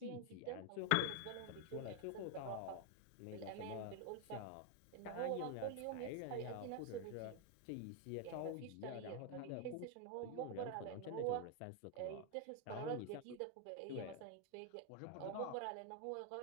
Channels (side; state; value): both; different; correlation 0.01